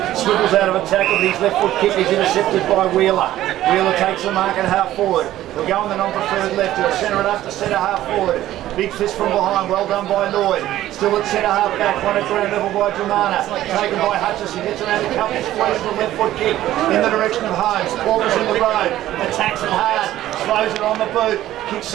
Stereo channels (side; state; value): left; quieter; 13.9 dB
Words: swivels out of a tackle, but his left foot kick is intercepted by Wheeler. Wheeler takes the mark at half forward. He'll go on the non-preferred left. He'll centre it up to centre half forward. Big fist from behind, well done by Lloyd. Still at centre half back, one at ground level by Dromana. Taken by Hutchison, gets around a couple, squeezes the left foot kick in the direction of Holmes. Porter's in the road, attacks it hard, throws it on the boot. Kicks